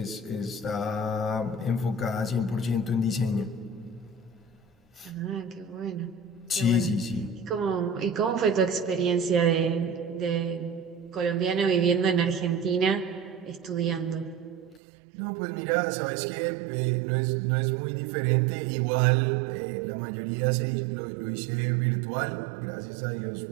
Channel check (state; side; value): drops out; left; at 14.8 s